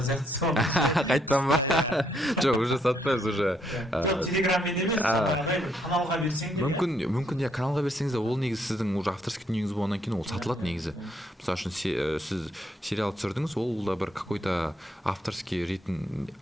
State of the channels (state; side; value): normal; both; correlation 0.73